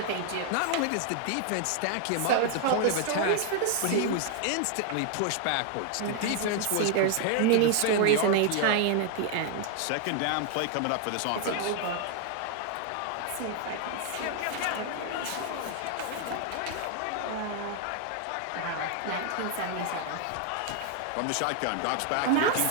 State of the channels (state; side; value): different; both; correlation 0.00